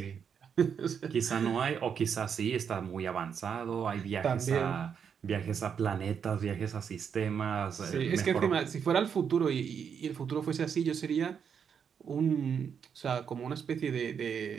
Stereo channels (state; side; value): quieter; left; 7.2 dB